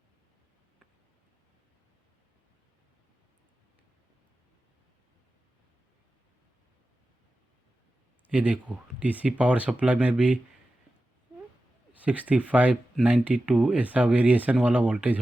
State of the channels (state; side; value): normal; both; correlation 0.93